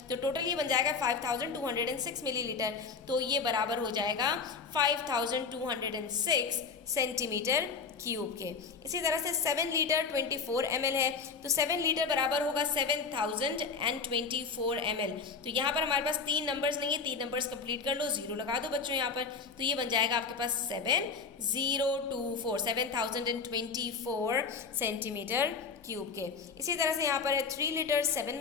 तो टोटल ये बन जाएगा 5206 मिलीलीटर, तो ये बराबर हो जाएगा 5206 सेंटीमीटर क्यूब के। इसी तरह से 7 लीटर 24 ml है, तो 7 लीटर बराबर होगा 7024 ml। तो यहाँ पर हमारे पास 3 नंबर्स नहीं है, 3 नंबर्स कंप्लीट कर लो, 0 लगा दो बच्चों यहाँ पर, तो ये बन जाएगा आपके पास 7024 सेंटीमीटर क्यूब के। इसी तरह से यहाँ पर है 3 लीटर 7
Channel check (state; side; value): quieter; right; 5.1 dB